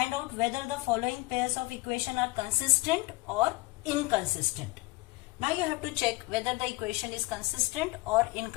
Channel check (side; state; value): right; quieter; 22.6 dB